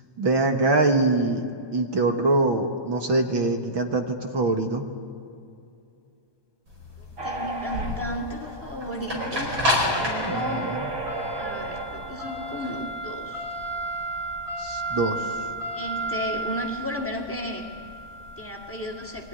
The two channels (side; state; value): left; late; 1.2 ms